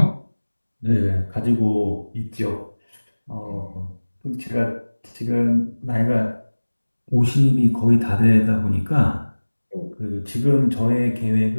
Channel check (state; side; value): inverted; both; correlation -1.00